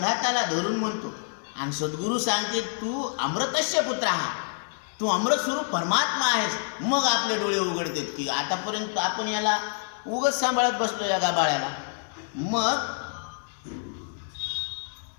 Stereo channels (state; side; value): silent; right; 60 dB below the other